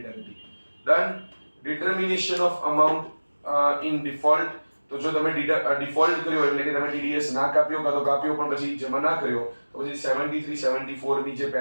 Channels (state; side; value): inverted; both; correlation -1.00